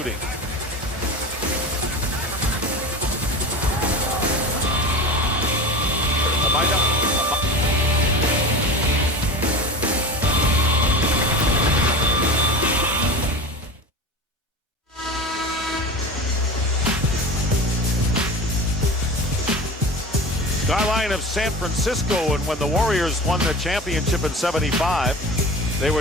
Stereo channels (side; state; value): both; normal; correlation 0.31